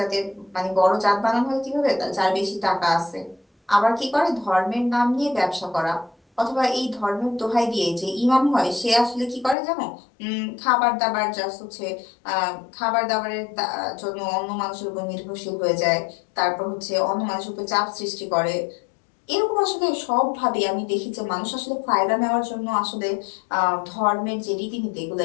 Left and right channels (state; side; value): drops out; right; at 9.6 s